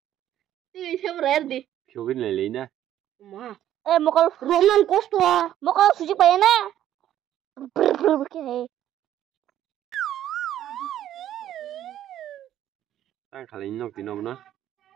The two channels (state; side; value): quieter; left; 11.8 dB